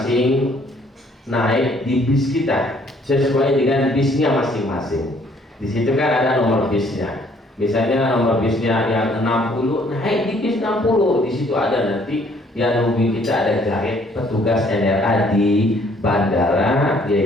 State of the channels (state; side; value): normal; both; correlation 0.62